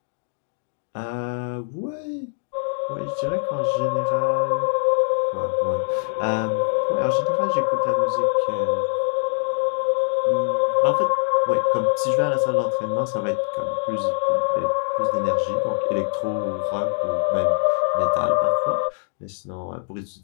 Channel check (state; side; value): silent; right; digital silence